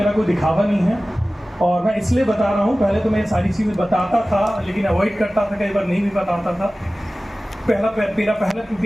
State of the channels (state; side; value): normal; both; correlation 0.97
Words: कोई दिखावा नहीं है और मैं इसलिए बता रहा हूँ, पहले तो मैं सारी चीज़ें बताता था लेकिन अवॉइड करता था, कई बार नहीं भी बताता था। मेरा पहला